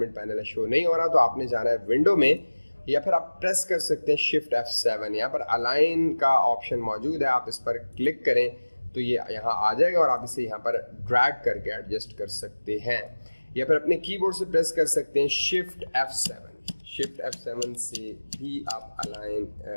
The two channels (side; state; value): both; inverted; correlation -1.00